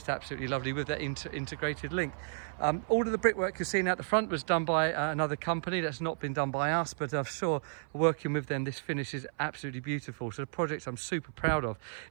absolutely lovely with that integrated link. All of the brickwork you're seeing out the front was done by another company. That's not been done by us, but I'm sure working with them, this finish is absolutely beautiful. So the project I'm super proud of.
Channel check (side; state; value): left; silent; 56 dB below the other